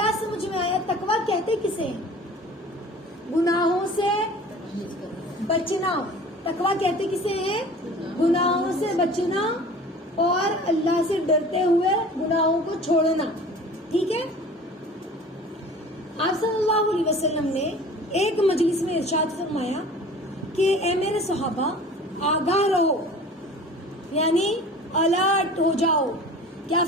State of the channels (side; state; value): both; normal; correlation 0.43